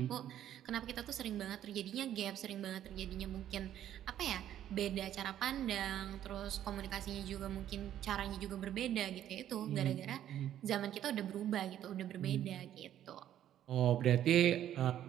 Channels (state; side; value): quieter; left; 11.3 dB